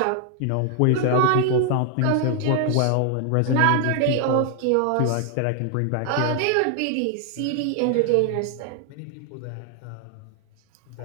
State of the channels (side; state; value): both; different; correlation 0.00